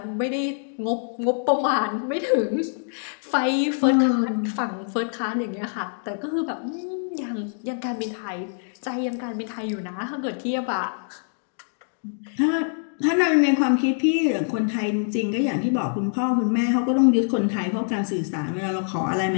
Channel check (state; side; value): silent; right; digital silence